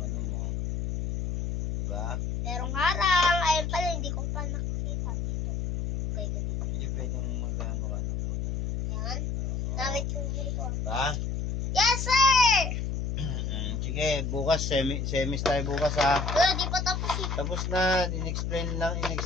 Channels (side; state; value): left; noise; hum, 1 dB below the sound